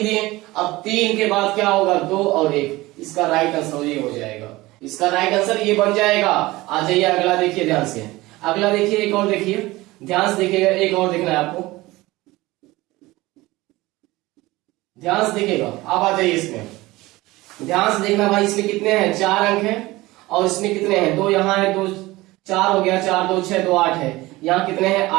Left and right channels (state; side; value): quieter; left; 19.6 dB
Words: दिए। अब 3 के बाद क्या होगा? 2 और 1। इसका राइट आंसर ये हो जाएगा। इसका राइट आंसर ये बन जाएगा। आ जाइए अगला देखिए ध्यान से। अगला देखिए, एक और देखिए, ध्यान से देखिएगा, एक और देखना है आपको। ध्यान से देखिएगा, अब आ जाइए इसमें। ध्यान से देखना भाई, इसमें कितने हैं? 4 अंक है और इसमें कितने हैं? 2 यहाँ है, 2 4 हो गया, 4 2 6 2 8 है। यहाँ कितने हैं?